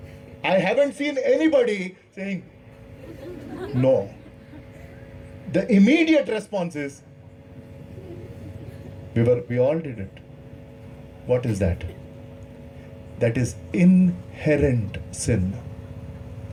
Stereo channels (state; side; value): identical; both; correlation 1.00